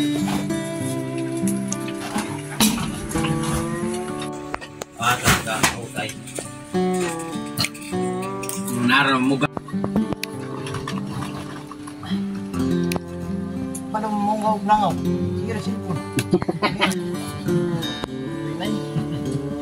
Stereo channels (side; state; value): both; identical; correlation 1.00